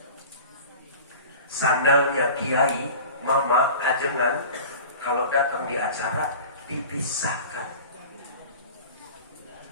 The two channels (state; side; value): inverted; both; correlation -0.38